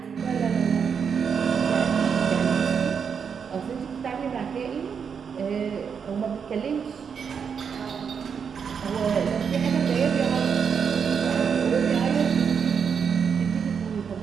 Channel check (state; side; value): quieter; left; 6.7 dB